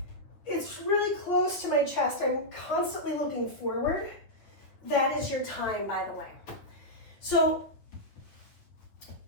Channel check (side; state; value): right; late; 9.2 ms